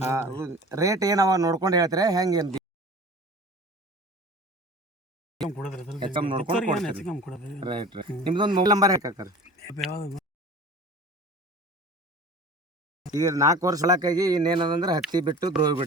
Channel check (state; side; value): normal; both; correlation 0.40